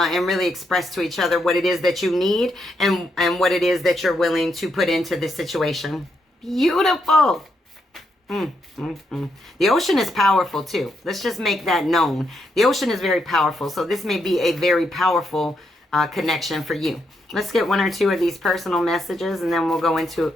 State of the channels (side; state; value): both; normal; correlation 0.79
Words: really express to each other what it is that you need and what it is that you're willing to put into this situation. Beautiful. The ocean is powerful too. Let's just make that known. The ocean is very powerful. So this may be a very powerful connection for you. Let's get one or two of these personal messages and then we'll